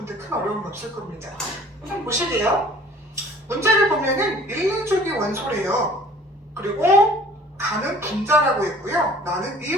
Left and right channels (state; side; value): normal; both; correlation 0.51